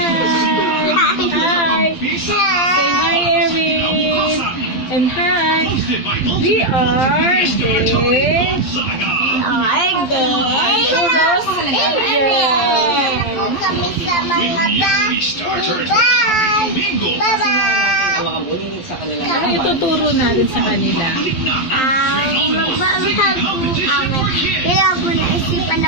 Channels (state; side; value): late; right; 12 ms